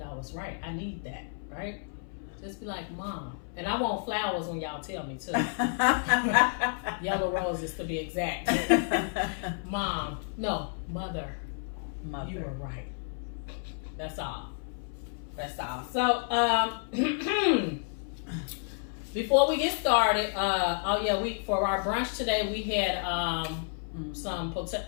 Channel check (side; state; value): right; silent; 57 dB below the other